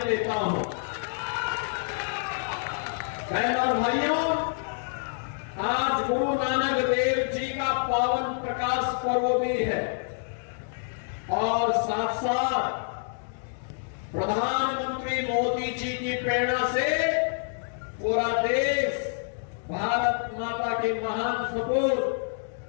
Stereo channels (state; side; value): silent; right; digital silence